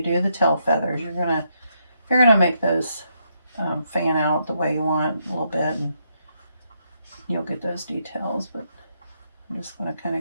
do the tail feathers, you're gonna make those fan out the way you want a little bit, and you'll get those details. But I'm just gonna kind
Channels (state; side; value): inverted; both; correlation -0.78